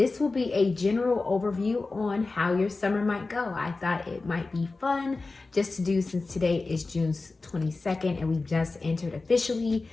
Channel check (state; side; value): quieter; right; 3.6 dB